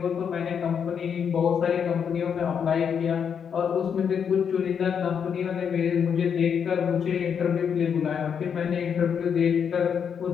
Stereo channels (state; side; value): quieter; right; 7.4 dB